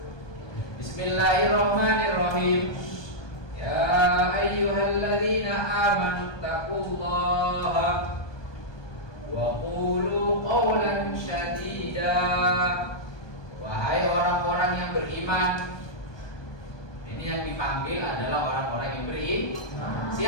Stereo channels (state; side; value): late; right; 1.2 ms